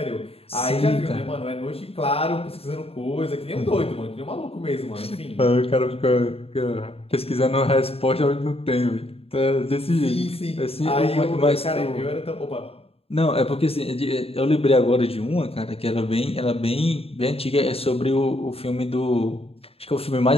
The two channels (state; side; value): late; right; 0.28 ms